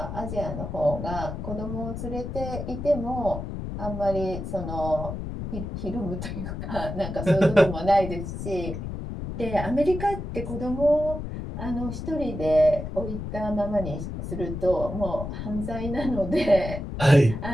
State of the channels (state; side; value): noise; left; rumble, 6 dB below the sound